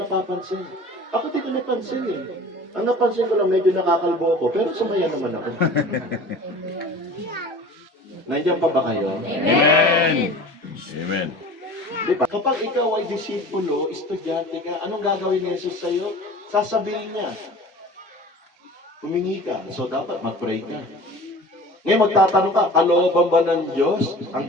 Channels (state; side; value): normal; both; correlation 0.41